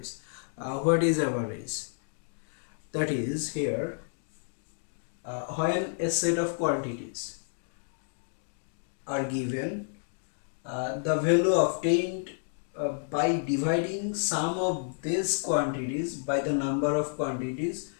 What is average? That is here when a set of quantities are given, the value obtained by dividing sum of these quantities by the number of quantities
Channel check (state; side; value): silent; right; digital silence